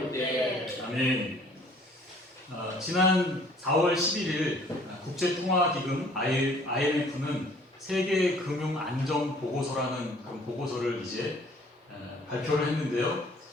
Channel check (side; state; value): both; normal; correlation 0.55